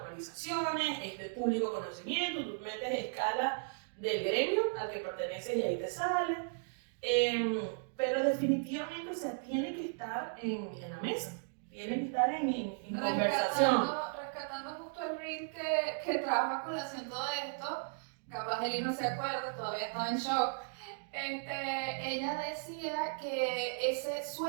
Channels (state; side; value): silent; left; digital silence